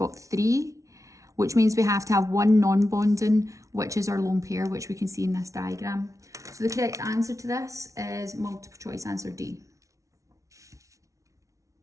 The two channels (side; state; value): left; late; 0.15 ms